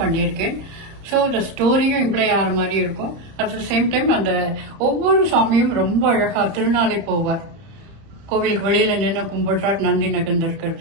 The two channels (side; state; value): left; late; 31 ms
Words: பண்ணியிருக்கேன். ஸோ இந்த ஸ்டோரியும் இம்ப்ளை ஆகிற மாதிரி இருக்கும். அட் த சேம் டைம் அந்த ஒவ்வொரு சாமியும் ரொம்ப அழகா திருநாளை போவார். கோவிலுக்கு வெளியில நின்று கும்பிடுறார், நந்தி நகர்ந்து